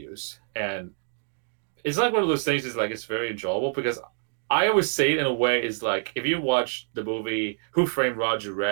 And it's one of those things is it's very enjoyable, because I always say it in a way is if you watch the movie Who Framed Roger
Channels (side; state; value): left; silent; digital silence